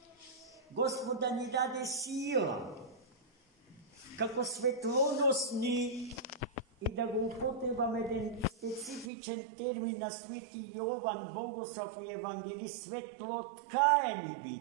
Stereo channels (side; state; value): left; drops out; at 9.1 s